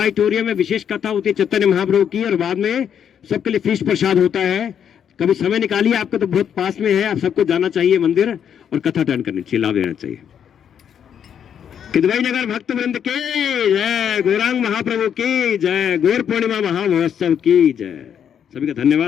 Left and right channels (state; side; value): quieter; right; 8.5 dB